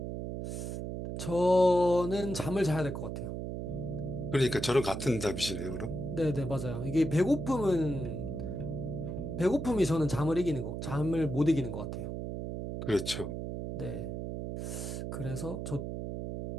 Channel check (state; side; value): noise; right; hum, 5 dB below the sound